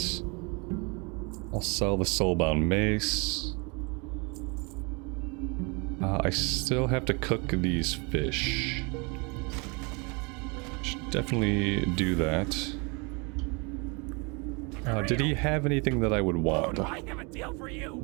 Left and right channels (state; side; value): quieter; left; 30.8 dB